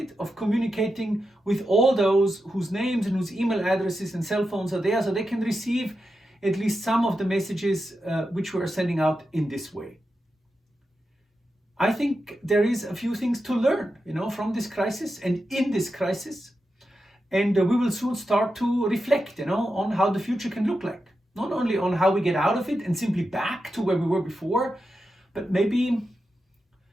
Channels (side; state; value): both; normal; correlation 0.89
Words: of communicating with all those whose names and whose email addresses and cell phones are there, so they can receive at least some of the messages which we are sending out in this way. I think there is a few things to learn, from this crisis and in this crisis. And we will soon start to reflect, on how the future can look like. Not only on how we get out of it and simply back to where we were before, but maybe